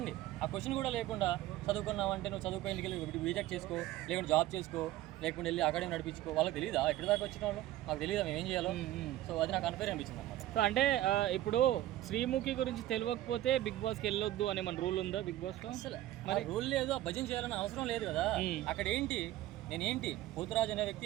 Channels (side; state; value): left; quieter; 14.7 dB